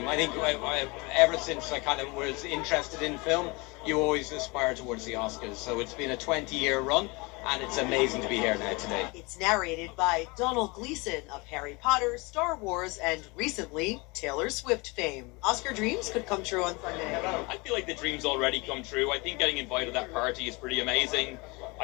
I think ever since I kind of was interested in film, you always aspire towards the Oscars. So it's been a 20-year run, and it's amazing to be here now today. It's narrated by Donald Gleason of Harry Potter, Star Wars, and recently, Taylor Swift fame. Oscar dreams could come true on Sunday. I feel like the dream's already come true. I think getting invited to that party is pretty amazing.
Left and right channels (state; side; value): quieter; right; 26.7 dB